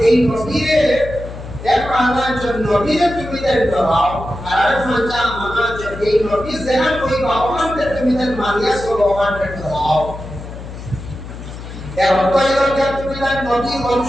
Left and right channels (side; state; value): left; noise; hum, 12 dB below the sound